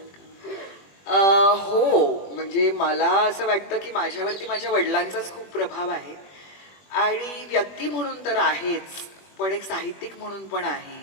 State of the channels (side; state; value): right; late; 21 ms